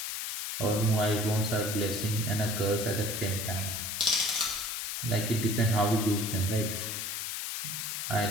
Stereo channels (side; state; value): left; noise; hiss, 3 dB below the sound